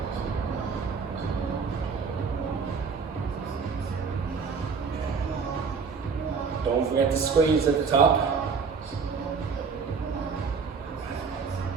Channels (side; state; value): left; quieter; 5.3 dB